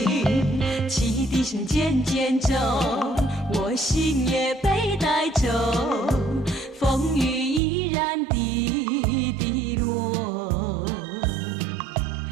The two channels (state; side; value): drops out; left; at 7.6 s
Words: 汽笛声渐渐走，我心也被带走，风雨依然滴滴落，